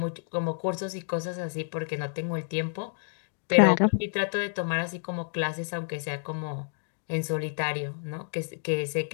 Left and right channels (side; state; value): right; silent; digital silence